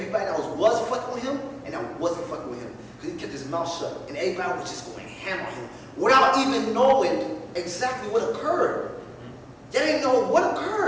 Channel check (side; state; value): both; identical; correlation 1.00